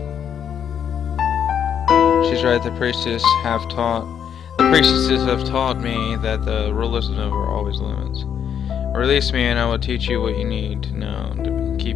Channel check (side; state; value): right; quieter; 8.5 dB